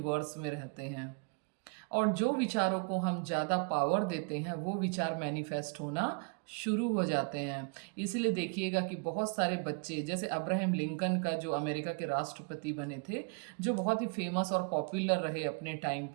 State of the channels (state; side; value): quieter; left; 36.6 dB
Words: में रहते हैं, और जो विचारों को हम ज़्यादा पावर देते हैं वो विचार मैनिफेस्ट होना शुरू हो जाते हैं। इसलिए देखिएगा कि बहुत सारे बच्चे, जैसे अब्राहम लिंकन का, जो अमेरिका के राष्ट्रपति बने थे, जो बहुत ही फेमस और पॉपुलर रहे अपने टाइम